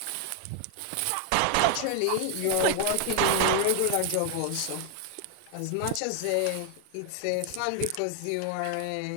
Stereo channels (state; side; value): different; both; correlation 0.00